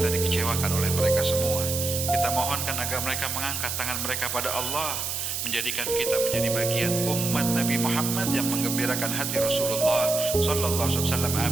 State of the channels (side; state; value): right; noise; hiss, 3 dB below the sound